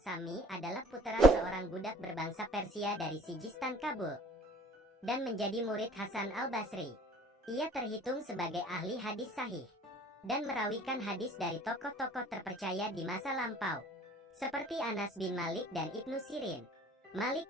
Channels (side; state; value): both; normal; correlation 0.50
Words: adalah putra seorang budak berbangsa Persia dari Sijistan Kabul dan menjadi murid Hasan al-Basri. Ia terhitung sebagai ahli hadis sahih dan merawikan hadis dari tokoh-tokoh terpercaya di masa lampau seperti Anas bin Malik dan Ibnu Sirin. Malik